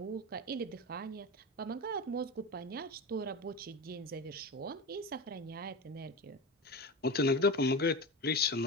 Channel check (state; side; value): normal; both; correlation 0.24